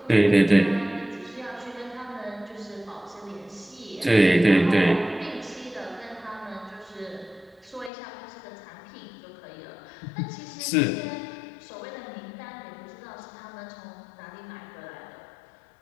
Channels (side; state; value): right; drops out; at 7.9 s